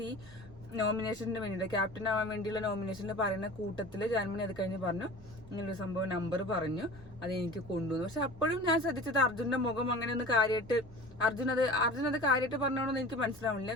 നോമിനേഷന് വേണ്ടിയിട്ട്, ക്യാപ്റ്റൻ ആവാൻ വേണ്ടിയുള്ള നോമിനേഷനിൽ പറയുന്ന കൂട്ടത്തില് ജാൻമണി അത് കഴിഞ്ഞ് പറഞ്ഞു ഇങ്ങനൊരു സംഭവം നമ്പർ പറഞ്ഞു, അത് എനിക്ക് കൊണ്ടുവന്നു. പക്ഷെ അപ്പോഴും ഞാൻ ശ്രദ്ധിച്ചത് അർജുന്റെ മുഖം അങ്ങനെ ഒന്ന് കാര്യമായിട്ട് അർജുൻ അത് കാര്യമായിട്ട് പറഞ്ഞോണെന്ന് എനിക്ക് മനസ്സിലാവില്ല.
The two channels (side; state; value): both; normal; correlation 0.39